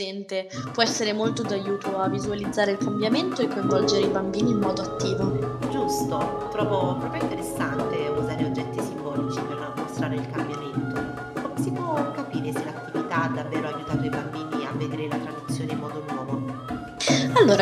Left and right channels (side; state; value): both; identical; correlation 1.00